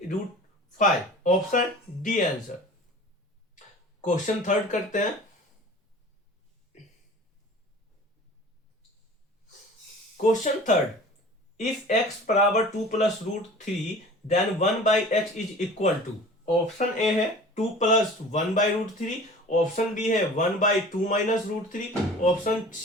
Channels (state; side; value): normal; both; correlation 0.42